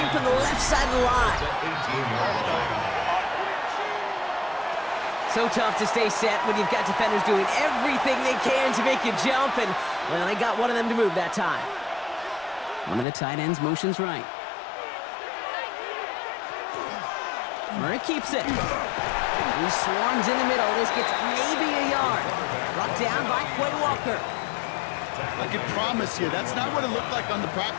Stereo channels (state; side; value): drops out; right; at 13.1 s